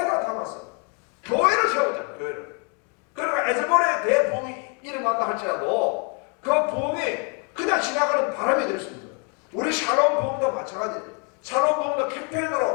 담았어요. 교회를 세우잖아요. 교회를. 그러니까 에즈볼의 대부흥이 일어난다 할지라도 그 부흥이 그냥 지나가는 바람이 될 수 있는 거예요. 우리 샬롬 부흥도 마찬가지예요. 샬롬 부흥도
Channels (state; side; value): quieter; right; 37.2 dB